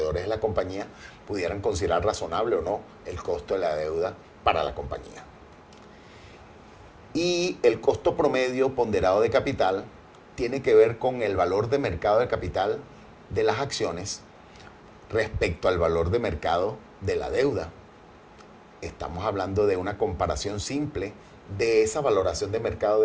de la compañía, pudieran considerar razonable o no el costo de la deuda para la compañía. Y el costo promedio ponderado de capital tiene que ver con el valor de mercado de capital de las acciones respecto al valor de mercado de la deuda. Estamos hablando de una comparación simple de esa valoración de mercado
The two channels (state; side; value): identical; both; correlation 1.00